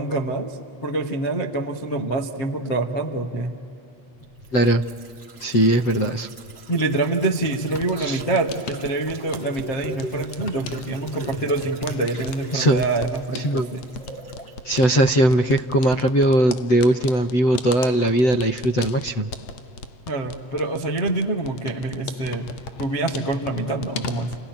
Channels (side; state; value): right; late; 7.9 ms